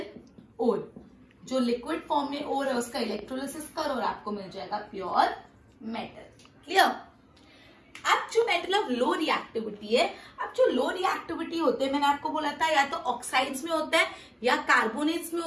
ओर, जो लिक्विड फॉर्म में ओर है उसका इलेक्ट्रोलिसिस करो और आपको मिल जाएगा प्योर मेटल। क्लियर? अब जो मेटल ऑफ लो रिएक्टिविटी है, अब जो लो रिएक्टिविटी होते हैं मैंने आपको बोला था या तो ऑक्साइड्स में होता है या कार्बोनेट्स में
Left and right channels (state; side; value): identical; both; correlation 1.00